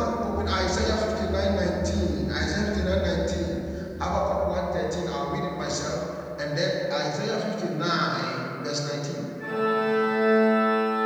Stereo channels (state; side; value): identical; both; correlation 1.00